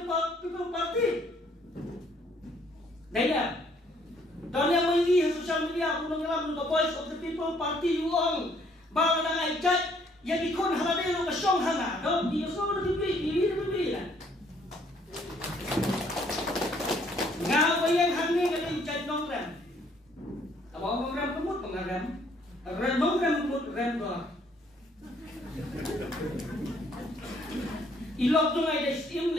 party. Daya. Donya mai social media punong yalam ka boys of the people party uong bala na ay kat ya dikon halade no ka song hanga do di so no di na. Nga bayang hangni ka din chat nong ram. Abo ram kumut pangaram. Ram ram kumut ram do. Ilok tu ngai dah steam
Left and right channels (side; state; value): both; normal; correlation 0.64